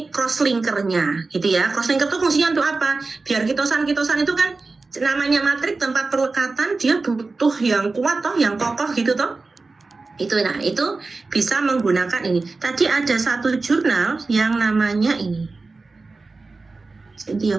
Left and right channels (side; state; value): left; quieter; 3.8 dB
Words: cross-linkernya, gitu ya. Cross-linker itu fungsinya untuk apa? Biar kitosan-kitosan itu kan namanya matrik tempat perlekatan, dia butuh yang kuat toh, yang kokoh gitu toh. Itu bisa menggunakan ini. Tadi ada satu jurnal yang namanya ini.